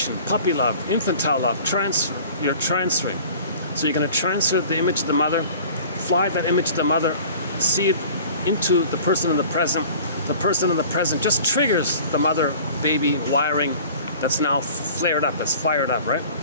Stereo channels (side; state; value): both; inverted; correlation -0.45